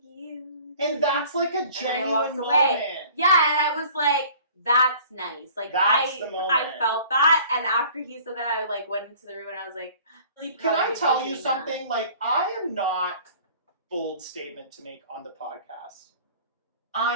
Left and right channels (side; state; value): both; inverted; correlation -0.49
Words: you. And that's like a genuine moment. Yeah, and I was like, That's nice. Like That's the moment. I felt that, and after he said that, I like went into the room and I was like, really can I tell you that. something? Like, I am not bold statement to make on the podcast.